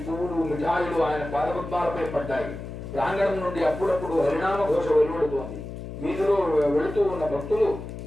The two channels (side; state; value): left; noise; hum, 9 dB below the sound